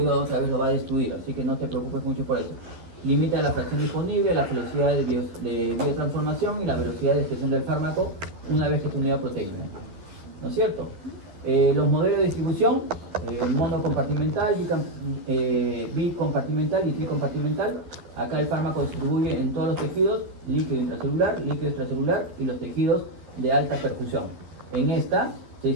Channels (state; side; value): late; left; 12 ms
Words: otra vez lo va a destruir, así que no te preocupes mucho por eso. Limita la fracción disponible, la velocidad de biotransformación y la velocidad de expresión del fármaco una vez que es unidad proteína, ¿no es cierto? Los modelos de distribución, monocompartimental, bicompartimental y tricompartimental. Acá el fármaco distribuye en todos los tejidos, líquido intracelular, líquido extracelular y los tejidos de alta perfusión. En esta se